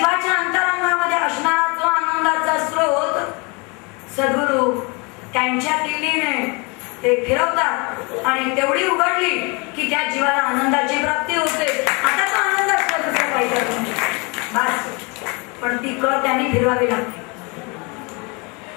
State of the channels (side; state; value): right; quieter; 29.8 dB